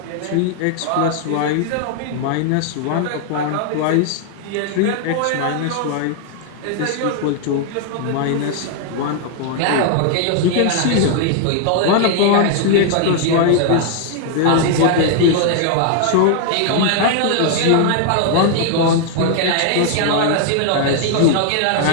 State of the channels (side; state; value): both; different; correlation 0.00